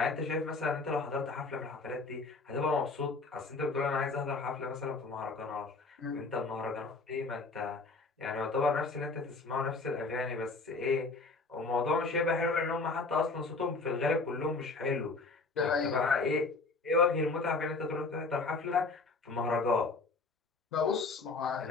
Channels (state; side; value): quieter; right; 3.8 dB